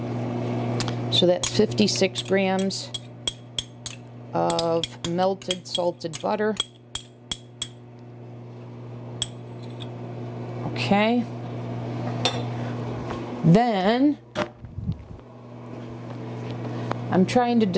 So that's 56 grams of melted salted butter. Okay. Then I'm trying to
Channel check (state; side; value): identical; both; correlation 1.00